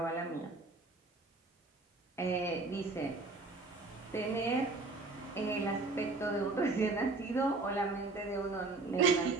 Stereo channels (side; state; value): left; quieter; 3.5 dB